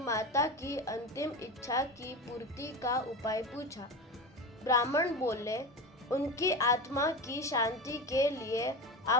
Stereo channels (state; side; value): normal; both; correlation 0.25